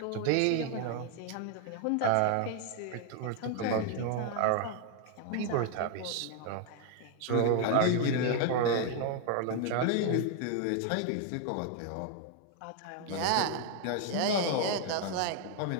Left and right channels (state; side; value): different; both; correlation 0.00